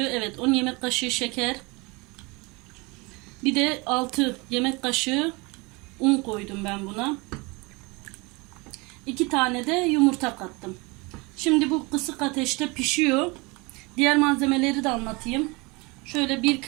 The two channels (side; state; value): left; quieter; 26.5 dB